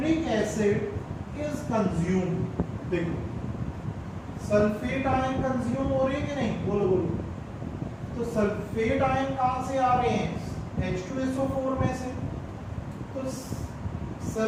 एसिड इज कंज्यूम्ड। देखो सल्फेट आयन कंज्यूम हो रही है कि नहीं, बोलो बोलो। तो सल्फेट आयन कहां से आ रहे हैं, H2SO4 में से। तो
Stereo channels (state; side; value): identical; both; correlation 1.00